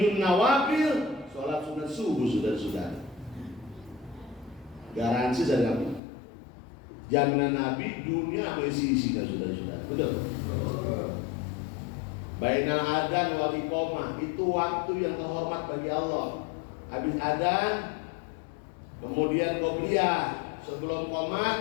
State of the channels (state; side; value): drops out; right; at 6.0 s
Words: Nawafil, sholat sholat sunat subuh, saudara-saudara. Garansi dari Nabi, jaminan Nabi dunia apa isi-isi kan saudara-saudara, betul? Bainal adzan wal iqamah itu waktu yang terhormat bagi Allah. Habis adzan, kemudian qobliyah, sebelum